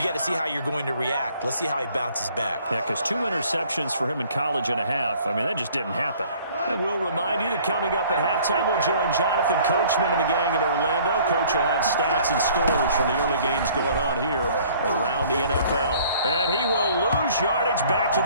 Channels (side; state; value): both; inverted; correlation -0.55